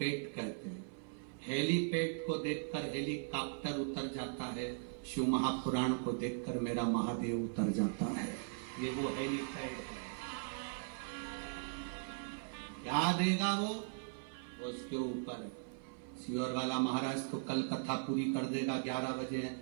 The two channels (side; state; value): left; silent; 52 dB below the other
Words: कहते हैं। हेलीपैड को देखकर हेलीकॉप्टर उतर जाता है, शिव महापुराण को देखकर मेरा महादेव उतर जाता है। ये वो हेलीपैड है। क्या देगा वो उसके ऊपर है। सियोर वाला महाराज तो कल कथा पूरी कर देगा, 11 बजे